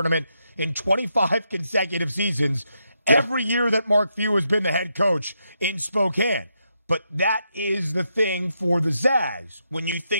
in 25 consecutive seasons, every year that Mark Few has been the head coach in Spokane. But that is the thing for the Zags. When you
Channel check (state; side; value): inverted; both; correlation -0.81